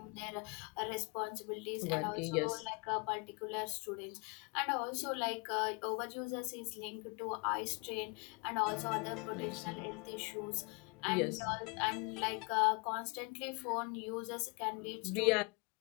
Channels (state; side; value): quieter; right; 31.4 dB